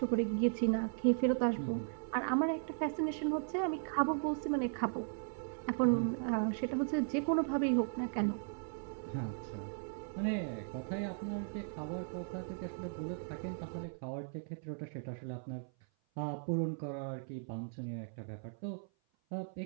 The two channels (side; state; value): left; silent; 53 dB below the other